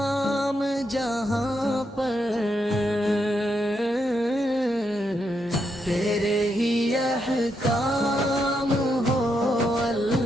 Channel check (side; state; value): both; normal; correlation 0.81